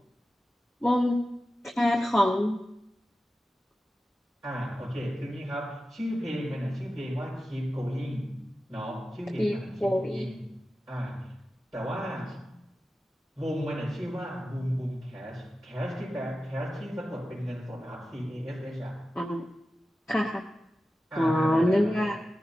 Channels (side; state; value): both; normal; correlation 0.93